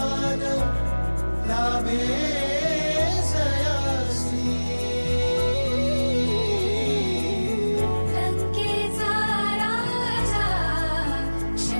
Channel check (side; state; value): both; inverted; correlation -1.00